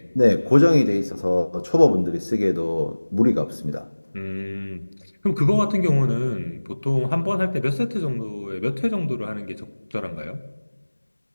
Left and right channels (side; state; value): both; inverted; correlation -1.00